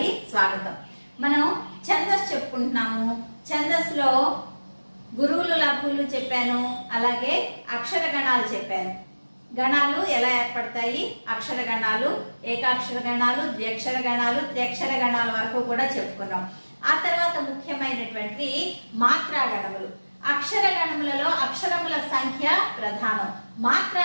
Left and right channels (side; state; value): both; inverted; correlation -1.00